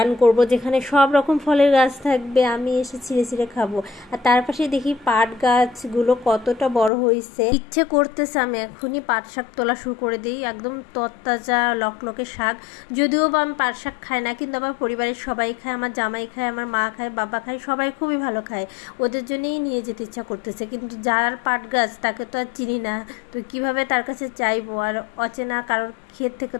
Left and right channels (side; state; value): right; drops out; at 6.9 s